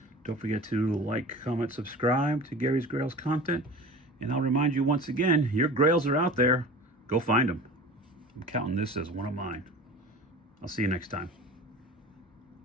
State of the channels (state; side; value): normal; both; correlation 0.38